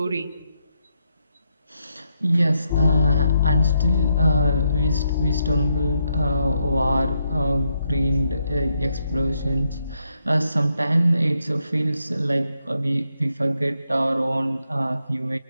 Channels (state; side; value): inverted; both; correlation -0.79